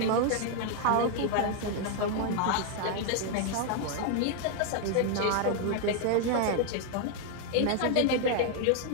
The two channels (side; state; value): both; different; correlation 0.00